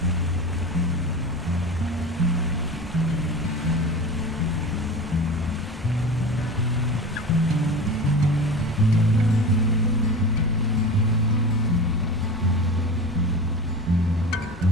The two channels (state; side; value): normal; both; correlation 0.31